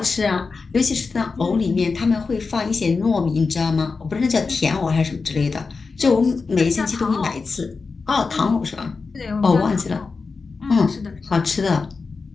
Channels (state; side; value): quieter; right; 4.5 dB